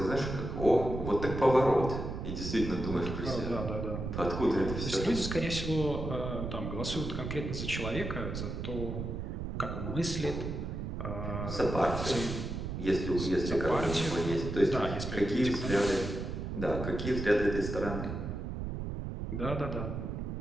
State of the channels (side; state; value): right; noise; rumble, 5 dB below the sound